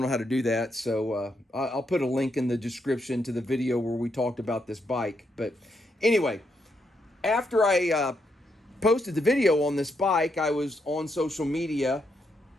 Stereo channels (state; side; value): normal; both; correlation 0.79